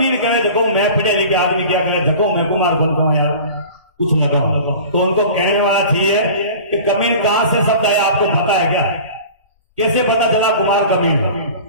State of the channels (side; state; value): both; inverted; correlation -0.40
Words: कहे, देखो मैं पढ़े लिखे आदमी क्या करे, देखो मैं कुमार बनता हूं यार, कुछ लगाओ। तो उनको कहने वाला चाहिए कि कमीन कहां से शब्द आया, आपको पता है क्या? कैसे पता चला कुमार कमीन?